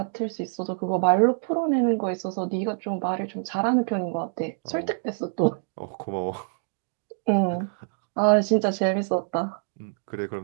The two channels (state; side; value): silent; left; digital silence